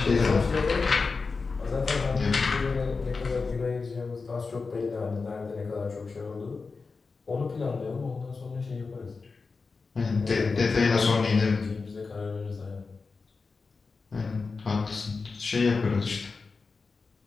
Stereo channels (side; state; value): right; quieter; 4.4 dB